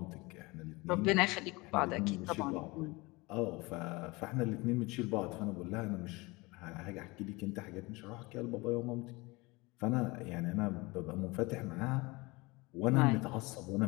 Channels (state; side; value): quieter; right; 24.0 dB